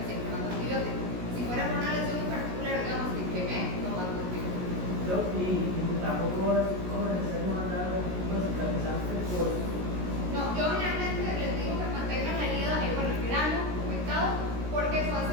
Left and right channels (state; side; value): late; left; 16 ms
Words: siempre mando antibióticos. Si fuera por una lesión en particular, digamos, que quemé, no mando antibióticos. Y tampoco es como necesario mandar un tipo de cicatrizante por... No, yo generalmente les digo que mantengan la herida, bueno, el grano humectado, porque eso